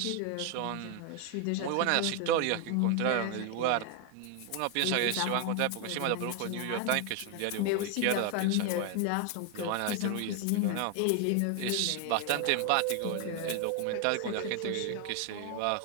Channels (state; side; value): different; both; correlation 0.01